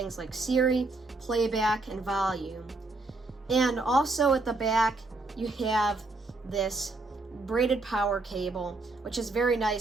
like Siri, playback, and volume. And also at the back, you have this braided power cable, which is very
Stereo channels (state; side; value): quieter; left; 3.2 dB